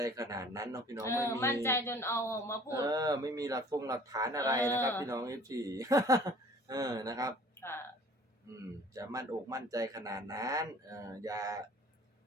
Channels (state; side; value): normal; both; correlation 0.50